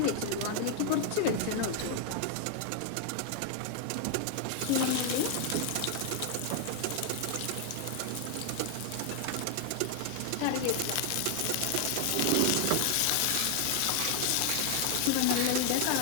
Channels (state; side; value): different; both; correlation 0.00